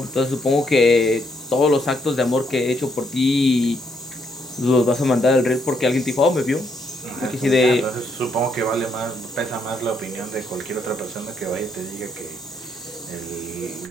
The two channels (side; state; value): both; normal; correlation 0.74